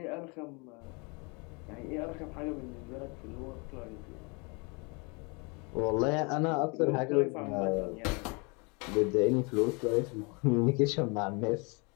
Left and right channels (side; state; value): right; quieter; 30.7 dB